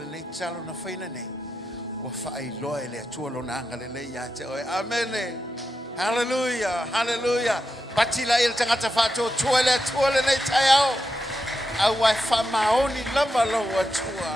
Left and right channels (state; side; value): normal; both; correlation 0.87